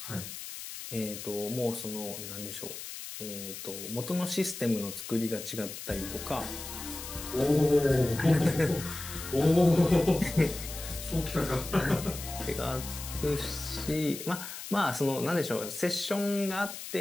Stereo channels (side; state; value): left; noise; hiss, 10 dB below the sound